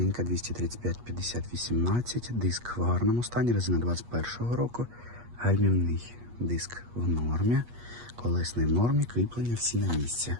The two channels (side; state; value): left; late; 8.4 ms